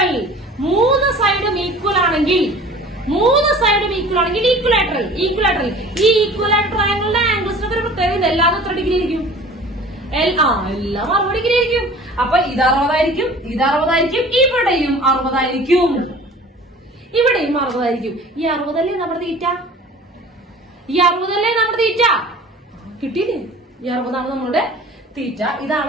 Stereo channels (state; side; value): normal; both; correlation 0.44